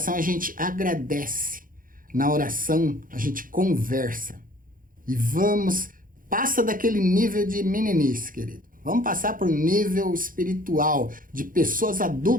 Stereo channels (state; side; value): late; left; 0.40 ms